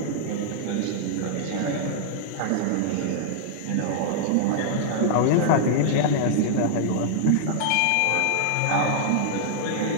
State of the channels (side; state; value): both; different; correlation -0.01